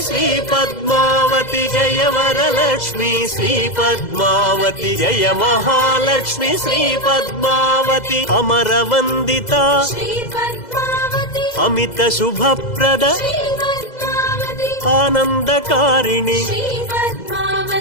Shri Padmavati Jaya Varalakshmi Shri Padmavati Jaya Mahalakshmi Shri Padmavati అమరవందిత Amit Subhaprada ఆనందకారిణి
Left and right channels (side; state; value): right; late; 2.0 ms